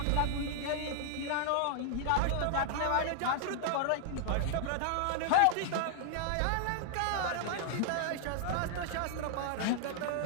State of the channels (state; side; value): different; both; correlation -0.01